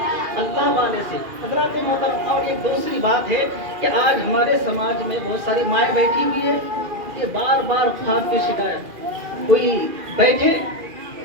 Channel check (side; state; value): left; late; 2.4 ms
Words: अल्लाह वाले से। हजरत मोहतरम, और एक दूसरी बात है कि आज हमारे समाज में बहुत सारी माएँ बैठी हुई है, ये बार बार ख्वाब की शिकायत। कोई बैठे